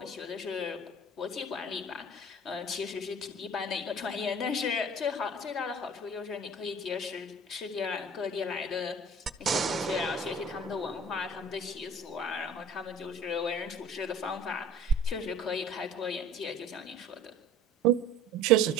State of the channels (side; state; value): both; normal; correlation 0.46